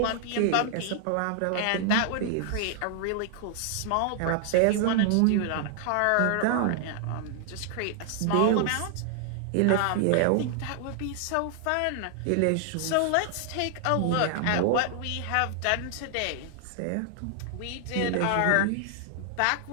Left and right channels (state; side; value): different; both; correlation 0.00